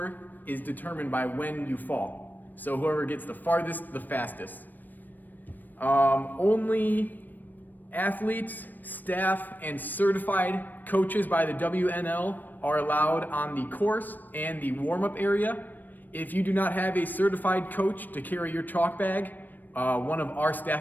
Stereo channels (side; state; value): right; late; 0.089 ms